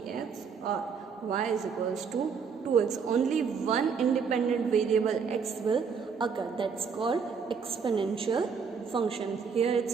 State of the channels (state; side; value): quieter; left; 6.0 dB